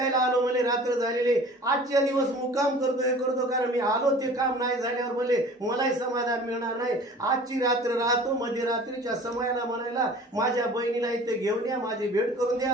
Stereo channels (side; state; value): both; normal; correlation 0.45